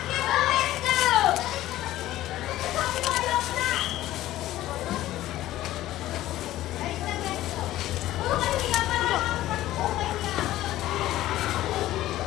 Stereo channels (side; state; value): right; quieter; 14.9 dB